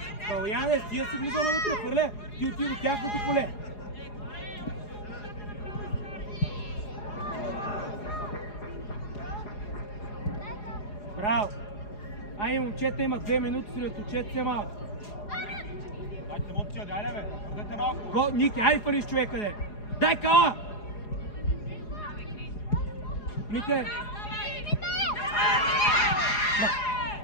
Калуяне, тия си влиза навътре, хвърля! Ти отиди до тяхното поле! Браво! Ай, момчета, има 2 минути, след отчете се малко. Дайте емоция, дайде бе, бъдете малко. Ники, айде фаниш човека, де! Дай Кала! Мите!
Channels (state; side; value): late; right; 4.8 ms